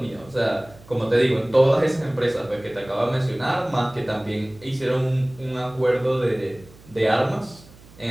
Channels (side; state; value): right; noise; hum, 23 dB below the sound